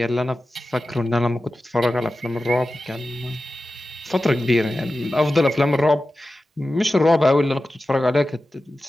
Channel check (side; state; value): both; normal; correlation 0.94